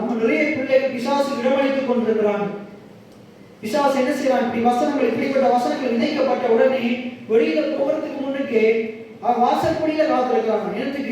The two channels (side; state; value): both; identical; correlation 1.00